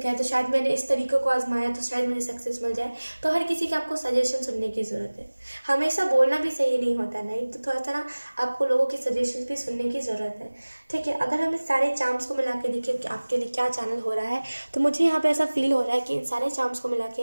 हैं शायद मैंने इस तरीके को आजमाया तो शायद मुझे सक्सेस मिल जाए। तो हर किसी की आपको सजेशन सुनने की ज़रूरत है, हमेशा बोलना भी सही नहीं होता नहीं, तो थोड़ा सा ना आपको लोगों की सजेशन भी सुनने की ज़रूरत है, ठीक है। अगर हम इस सारे चार्म्स को मिला के देखें कि आपके लिए क्या चैनल हो रहा है, तो मुझे यहाँ पे ऐसा फील हो रहा है कि इन सारे चार्म्स को मिला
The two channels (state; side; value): inverted; both; correlation -1.00